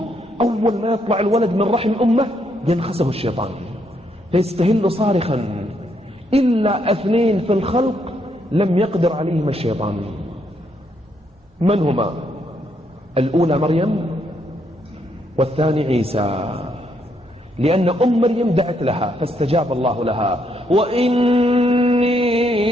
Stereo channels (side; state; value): both; normal; correlation 0.75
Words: أول ما يطلع الولد من رحم أمه ينخسه الشيطان فيستهل صارخا. إلا 2 في الخلق لم يقدر عليهم الشيطان. من هما؟ الأولى مريم والثاني عيسى، لأن أم مريم دعت لها فاستجاب الله لها. وإني